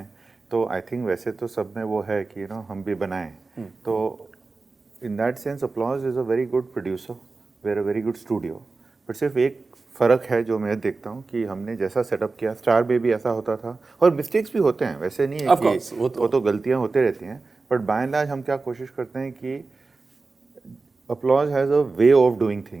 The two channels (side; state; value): left; quieter; 3.8 dB